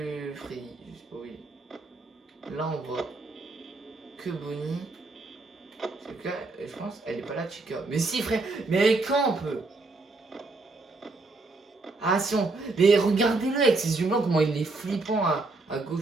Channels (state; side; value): quieter; left; 3.4 dB